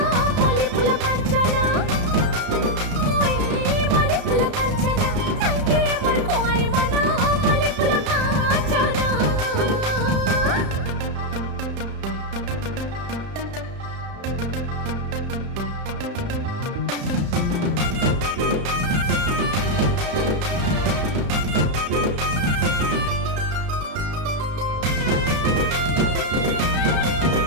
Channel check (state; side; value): late; left; 33 ms